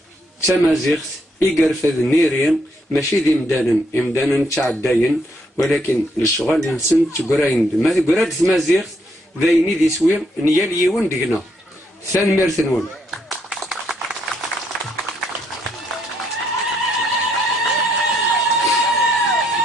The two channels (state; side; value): normal; both; correlation 0.74